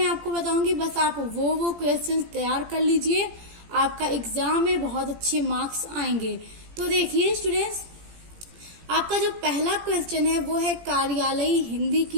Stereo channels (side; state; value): left; late; 17 ms